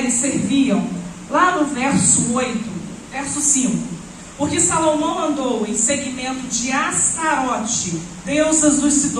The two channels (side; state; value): both; identical; correlation 1.00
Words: serviam, lá no verso 8, verso 5, porque Salomão andou em seguimento de Astarote, deusas dos